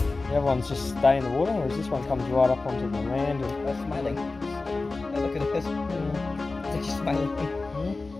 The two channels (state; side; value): quieter; right; 3.6 dB